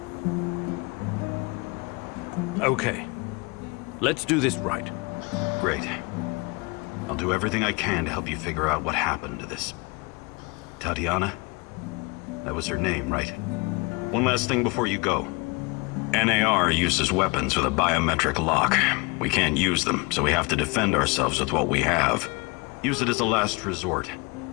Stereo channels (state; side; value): quieter; right; 28.0 dB